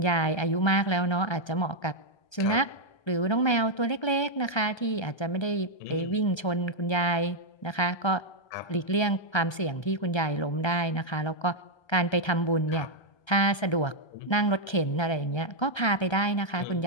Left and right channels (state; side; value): late; right; 1.3 ms